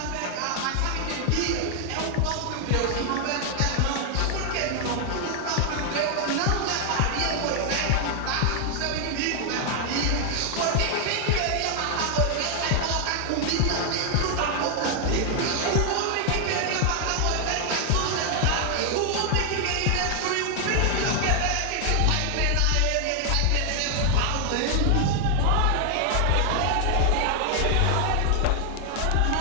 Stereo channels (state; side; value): different; both; correlation 0.00